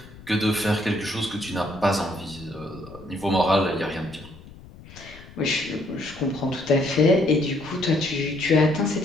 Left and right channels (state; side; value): noise; left; rumble, 19 dB below the sound